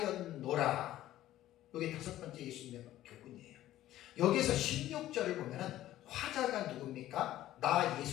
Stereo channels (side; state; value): right; quieter; 14.0 dB